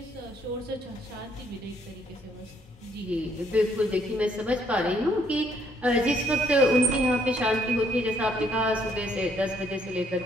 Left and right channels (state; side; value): normal; both; correlation 0.67